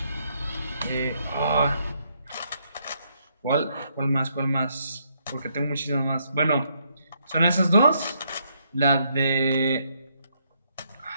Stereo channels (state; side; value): inverted; both; correlation -0.74